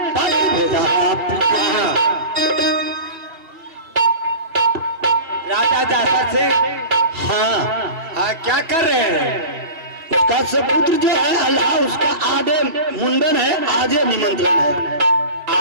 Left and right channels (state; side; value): late; left; 3.0 ms